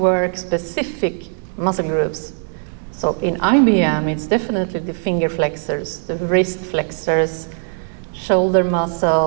specific muscle groups. So in IBM, it's definitely the finger flexors, the wrist flexors, shoulder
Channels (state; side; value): silent; left; 64 dB below the other